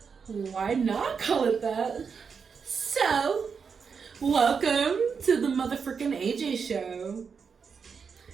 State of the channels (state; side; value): quieter; left; 5.9 dB